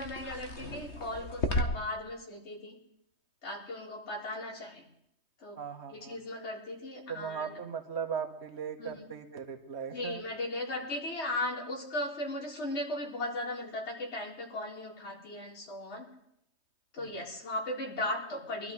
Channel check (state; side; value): late; right; 3.2 ms